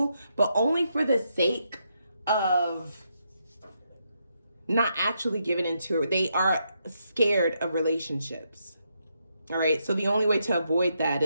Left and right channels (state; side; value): inverted; both; correlation -0.80